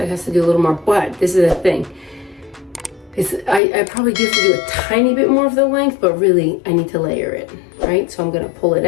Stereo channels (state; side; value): drops out; right; at 3.6 s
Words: has to do a little more, but this is the thing. I probably do have to do a tiny bit more of the length, but really I need to layer it, right? So I'm gonna pull it